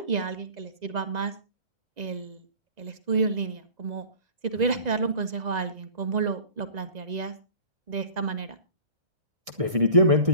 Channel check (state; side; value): late; left; 1.6 ms